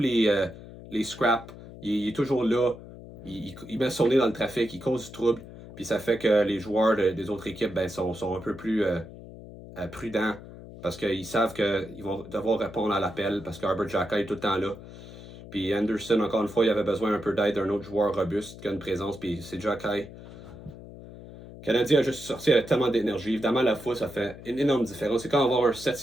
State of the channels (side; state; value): left; noise; hum, 15 dB below the sound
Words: scraps. Il est toujours là. Il met son nez dans le trafic. Il cause du trouble. Puis ça fait que les joueurs des autres équipes sont un peu plus prudents parce qu'ils savent qu'ils vont devoir répondre à l'appel parce qu'Herbert Jokai est tout le temps là. Puis Anderson, encore une fois, il avait besoin un peu d'aide d'un autre joueur robuste qui a une présence. Puis c'est Jokai. Le Canadien a juste sorti avec tellement d'énergie. Évidemment, la fois, ça fait une énorme différence. C'est quand on va avoir un